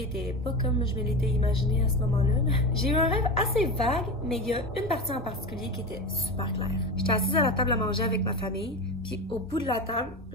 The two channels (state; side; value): normal; both; correlation 0.24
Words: était pas comme je me l'étais imaginé à ce moment-là. J'ai eu un rêve assez vague, mais il y a une partie en particulier qui était super claire. J'étais assise à la table à manger avec ma famille, puis au bout de la table,